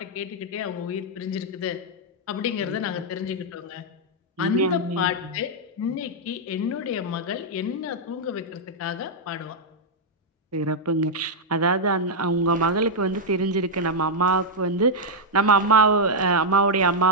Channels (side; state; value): both; normal; correlation -0.03